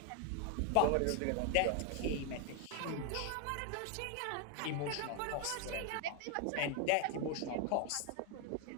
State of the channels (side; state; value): both; different; correlation 0.01